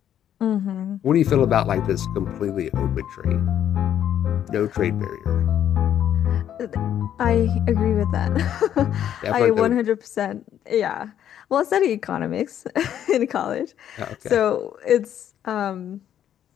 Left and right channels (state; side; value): quieter; right; 10.3 dB